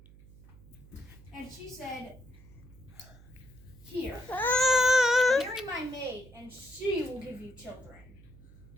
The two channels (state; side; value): noise; right; hum, 21 dB below the sound